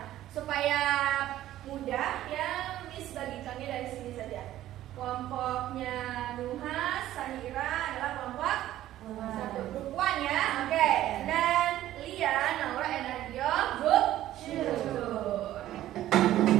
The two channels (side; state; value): left; quieter; 13.6 dB